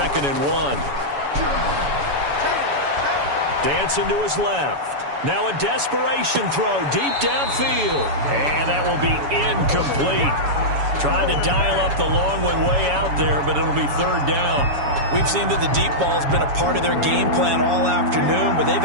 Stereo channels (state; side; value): late; left; 7.1 ms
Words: and 1. Dancing to his left. Now a desperation throw deep downfield. And that will be incomplete. Tried to dial up the long one way out there, but it'll be 3rd down. We've seen that the deep ball's been a part of their game plan all afternoon, but they've